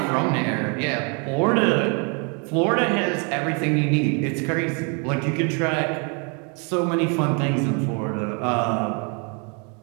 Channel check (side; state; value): left; quieter; 35.1 dB